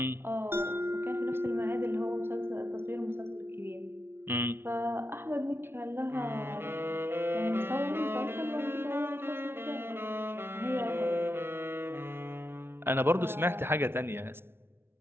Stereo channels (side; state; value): left; late; 0.12 ms